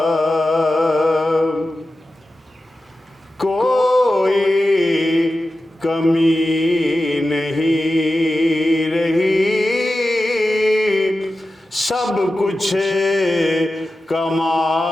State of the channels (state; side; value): normal; both; correlation 0.93